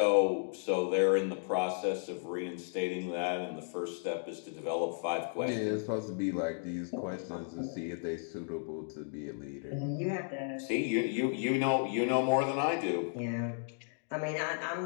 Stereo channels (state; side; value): silent; right; digital silence